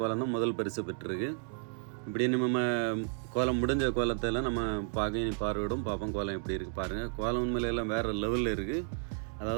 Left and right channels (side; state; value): left; silent; 56 dB below the other